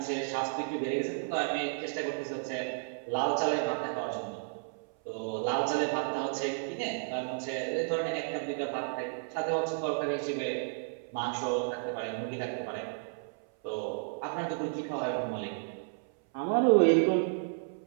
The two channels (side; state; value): left; silent; 56 dB below the other